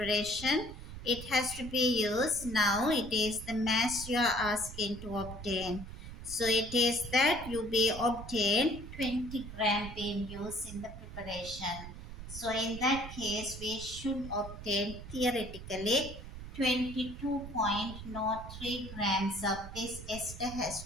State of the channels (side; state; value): right; noise; rumble, 11 dB below the sound